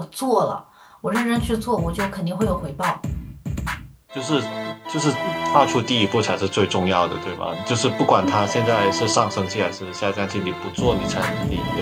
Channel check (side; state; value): both; identical; correlation 1.00